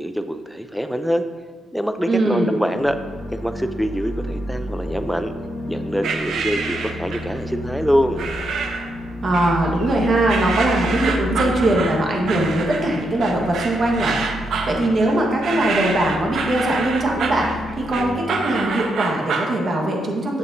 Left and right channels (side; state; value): both; normal; correlation 0.82